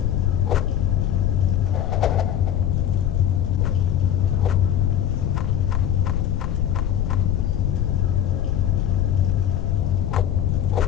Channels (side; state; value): right; quieter; 10.2 dB